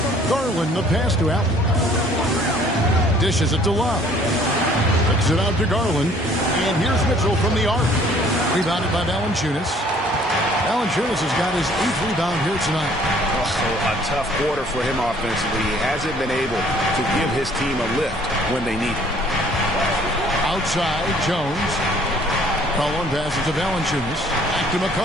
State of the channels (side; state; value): both; normal; correlation 0.58